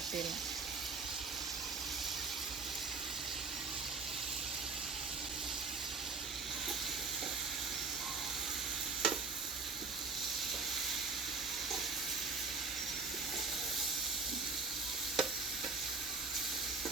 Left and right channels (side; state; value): left; quieter; 4.1 dB